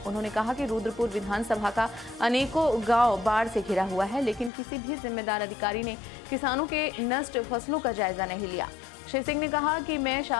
उन्होंने कहा कि रुद्रपुर विधानसभा का अनेकों गांव बाढ़ से घिरा हुआ है, लेकिन किसी भी जिम्मेदार अधिकारी ने किसानों के नष्ट फसलों का जायजा नहीं लिया। श्री सिंह ने कहा कि मैं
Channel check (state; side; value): drops out; right; at 4.5 s